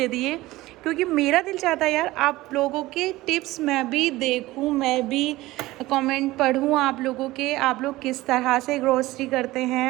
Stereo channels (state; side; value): quieter; left; 18.2 dB